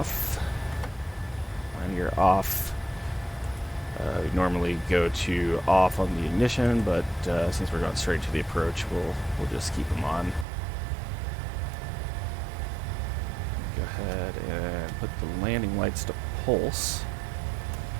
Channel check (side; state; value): left; drops out; at 10.5 s